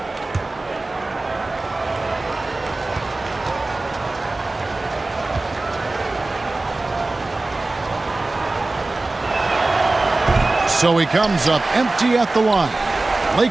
So he comes up empty at the line.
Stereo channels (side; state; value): left; quieter; 3.1 dB